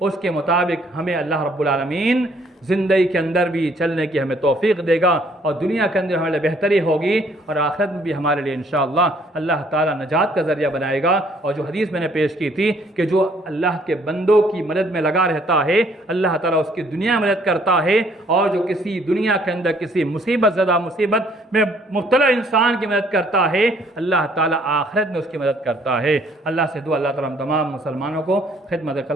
کے مطابق ہمیں اللہ رب العالمین زندگی کے اندر بھی چلنے کی ہمیں توفیق دے گا، اور دنیا کے اندر ہمارے لیے بہتری ہوگی اور آخرت میں بھی ہمارے لیے انشاءاللہ اللہ تعالیٰ نجات کا ذریعہ بنائے گا۔ اور جو حدیث میں نے پیش کی تھی کہ جو اللہ کے بندوں کی مدد میں لگا رہتا ہے اللہ تعالیٰ اس کی دنیا میں مدد کرتا ہے، اور جو کسی دنیا کے اندر کسی مصیبت میں مبتلا انسان کی مدد کرتا ہے اللہ تعالیٰ آخرت میں اس کی مدد کرتا ہے۔ اللہ سے دعا اللہ تعالیٰ ہم تمام مسلمانوں کو خدمت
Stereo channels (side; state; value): both; normal; correlation 0.63